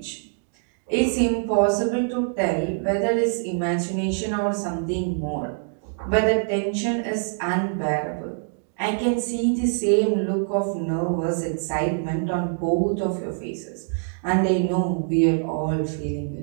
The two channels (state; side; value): silent; left; digital silence